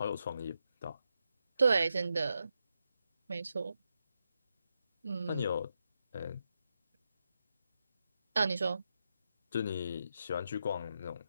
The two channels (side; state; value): both; inverted; correlation -0.85